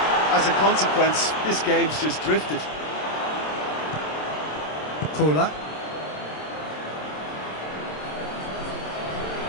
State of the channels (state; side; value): late; right; 27 ms